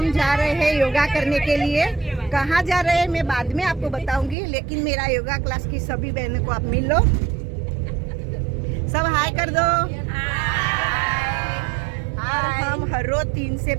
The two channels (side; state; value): left; drops out; at 4.4 s